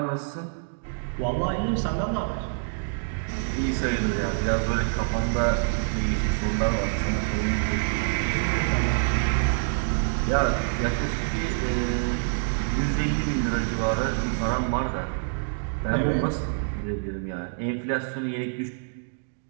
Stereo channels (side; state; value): left; silent; digital silence